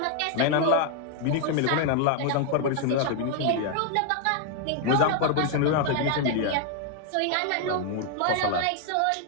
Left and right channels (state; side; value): different; both; correlation 0.00